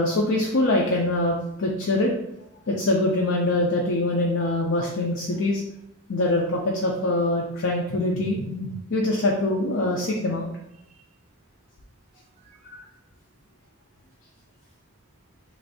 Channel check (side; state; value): both; normal; correlation 0.10